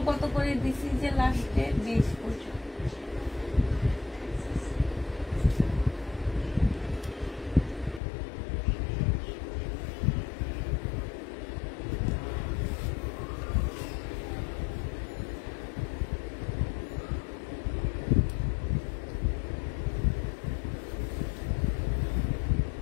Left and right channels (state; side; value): drops out; right; at 8.0 s